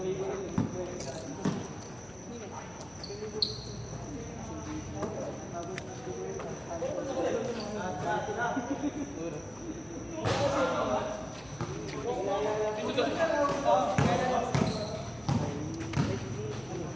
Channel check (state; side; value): noise; left; hum, 22 dB below the sound